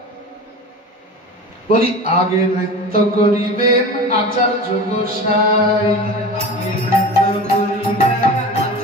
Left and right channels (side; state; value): both; normal; correlation 0.33